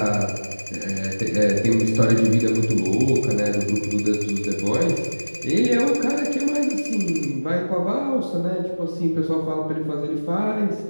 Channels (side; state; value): both; inverted; correlation -1.00